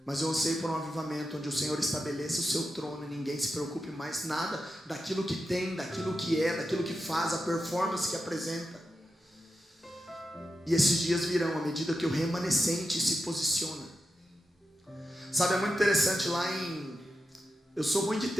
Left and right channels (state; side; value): normal; both; correlation 0.89